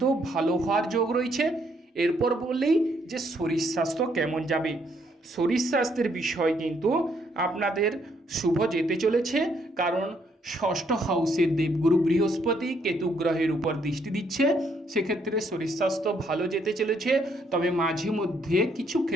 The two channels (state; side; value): normal; both; correlation 0.71